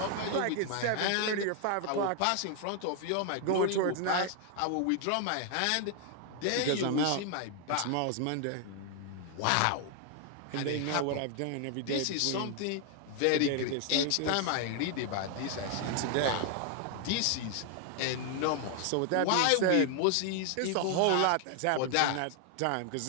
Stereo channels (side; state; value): both; different; correlation 0.00